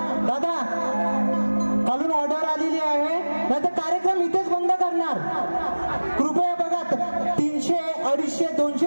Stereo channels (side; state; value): both; inverted; correlation -1.00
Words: दादा, खालून ऑर्डर आलेली आहे, नाहीतर कार्यक्रम इथेच बंद करणार. कृपया बघा, 300, 250,